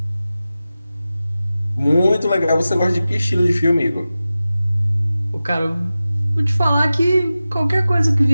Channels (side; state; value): both; inverted; correlation -0.95